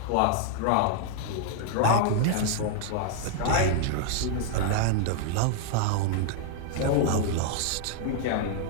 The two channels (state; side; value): different; both; correlation 0.00